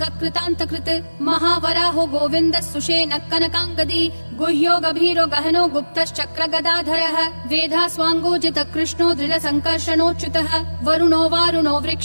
कृतान्तकृत् महावराहो गोविन्दः सुषेणः कनकाङ्गदी गुह्यो गभीरो गहनो गुप्तश्चक्र गदाधरः वेधास्वाङ्गोजितः कृष्णो दृढसङ्कर्षणोच्युतः वरुणो वारुणो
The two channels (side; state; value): both; inverted; correlation -1.00